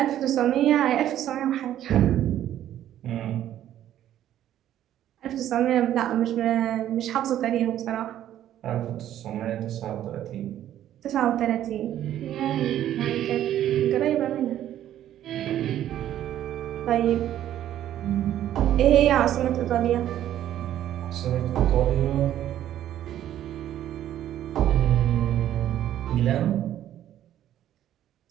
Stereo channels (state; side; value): quieter; left; 11.8 dB